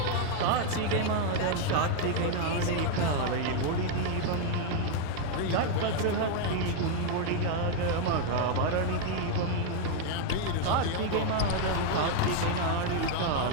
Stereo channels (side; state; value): both; different; correlation 0.00